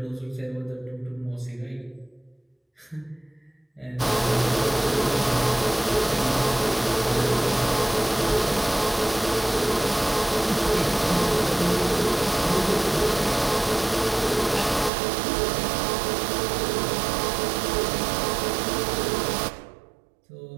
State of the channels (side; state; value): left; drops out; at 14.9 s